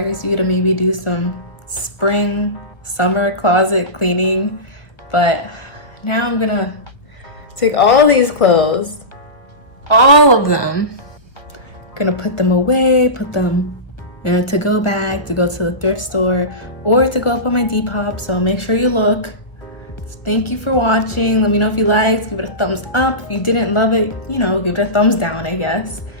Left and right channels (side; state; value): right; late; 1.2 ms